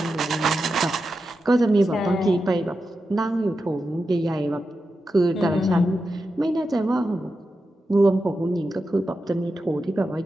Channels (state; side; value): normal; both; correlation 0.90